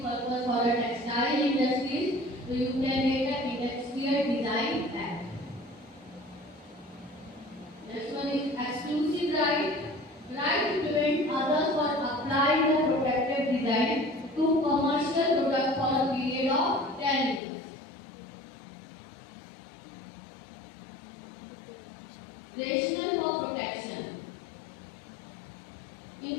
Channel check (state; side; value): drops out; right; at 17.4 s